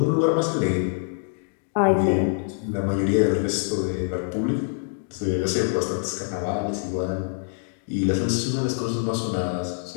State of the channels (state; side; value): silent; right; digital silence